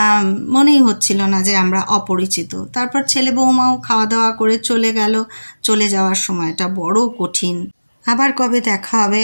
মনেই হচ্ছিল না যে আমরা অপরিচিত। তারপর ছেলে বৌমাও খাওয়া দাওয়া করে চলে গেল। চলে যাওয়ার সময়টা বড় কঠিন। আবার কবে দেখা হবে,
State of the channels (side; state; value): both; inverted; correlation -1.00